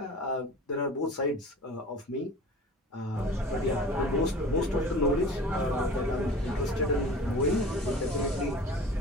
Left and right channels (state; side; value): normal; both; correlation 0.40